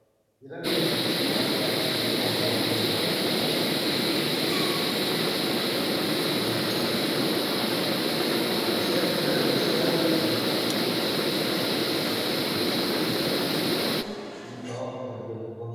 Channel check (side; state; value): both; identical; correlation 1.00